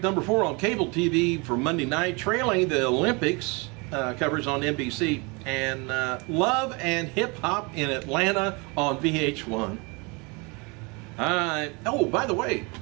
number 4 on cable TV for Monday night, trailing the Olympics coverage on NBC, and Love and Hip Hop in Atlanta on VH1. Oh, by the way,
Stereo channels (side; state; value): left; quieter; 29.3 dB